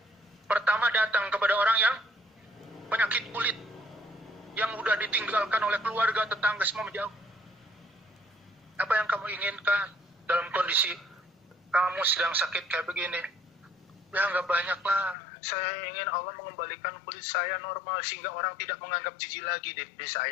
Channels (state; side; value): drops out; right; at 15.2 s